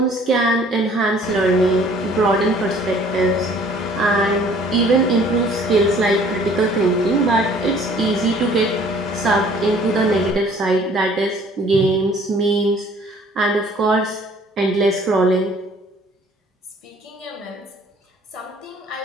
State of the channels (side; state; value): both; normal; correlation 0.55